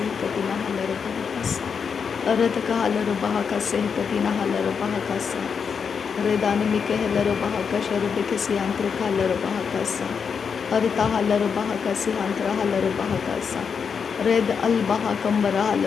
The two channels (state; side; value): quieter; right; 6.3 dB